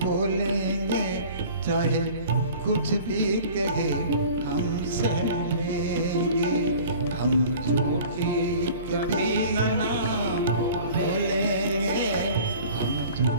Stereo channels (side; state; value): both; inverted; correlation -0.45